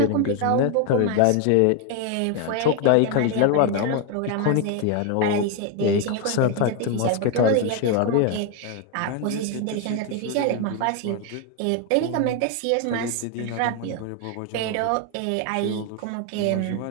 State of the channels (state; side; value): different; both; correlation 0.01